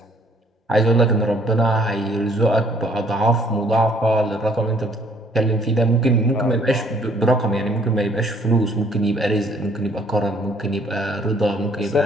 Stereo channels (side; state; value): both; normal; correlation 0.62